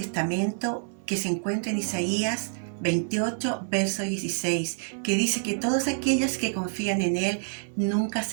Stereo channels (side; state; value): left; silent; digital silence